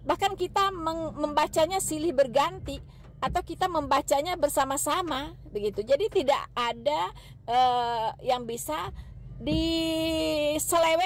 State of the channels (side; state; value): both; identical; correlation 1.00